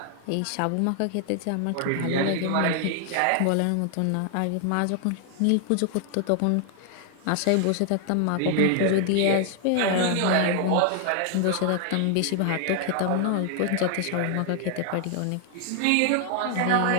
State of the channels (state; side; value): different; both; correlation 0.00